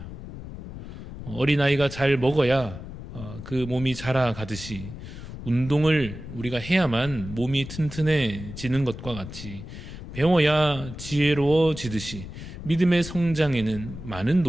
어린아이가 잘 먹어야 그 몸이 자라가듯이 운동을 우리가 해야만 몸이 튼튼해지는 것과 같이 배워야 지혜로워지듯이 믿음의 성장에는 많은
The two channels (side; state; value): left; noise; rumble, 11 dB below the sound